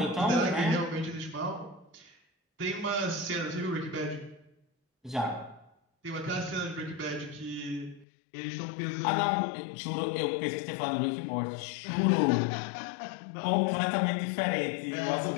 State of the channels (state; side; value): drops out; right; at 8.1 s